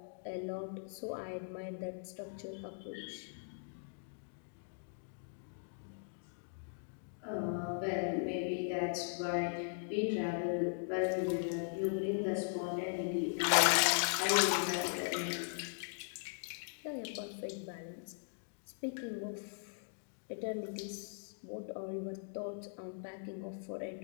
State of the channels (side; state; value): right; silent; digital silence